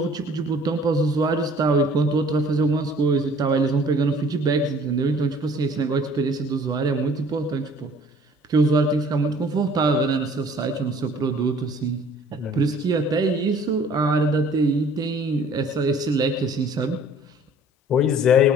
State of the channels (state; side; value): normal; both; correlation 0.53